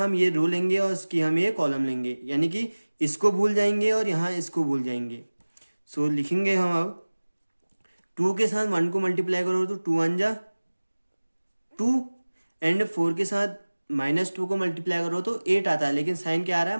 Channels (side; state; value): both; inverted; correlation -1.00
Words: ये रो लेंगे और इसकी हम ये कॉलम लेंगे, यानी कि इसको भूल जाएंगे और यहाँ इसको भूल जाएंगे। सो लिखेंगे हम अब 2 के साथ 1 को मल्टीप्लाई करो तो 2 1 जा 2 एंड 4 के साथ -2 को मल्टीप्लाई करो तो 8 आता है, लेकिन साइन क्या आ रहा